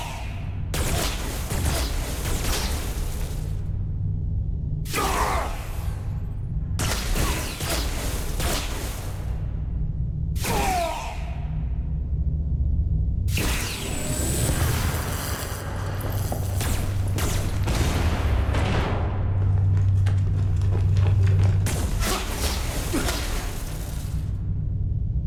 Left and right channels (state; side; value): identical; both; correlation 1.00